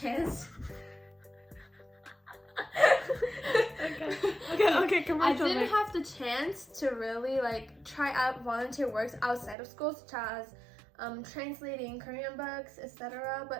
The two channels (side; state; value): left; drops out; at 9.6 s